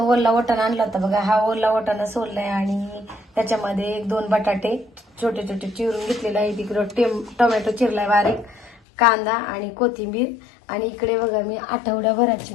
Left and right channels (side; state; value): right; drops out; at 8.8 s